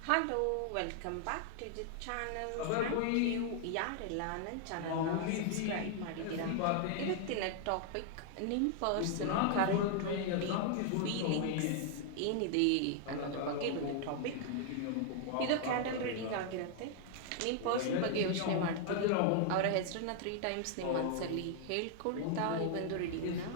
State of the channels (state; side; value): different; both; correlation 0.00